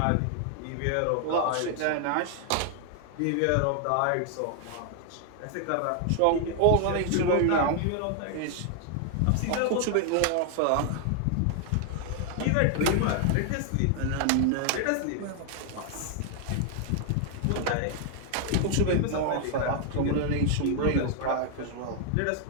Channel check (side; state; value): both; different; correlation 0.00